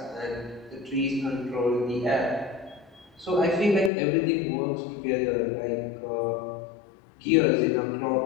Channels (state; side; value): drops out; right; at 3.9 s